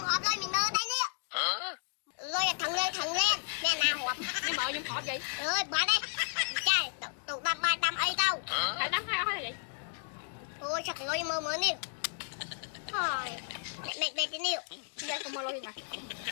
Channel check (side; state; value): right; silent; digital silence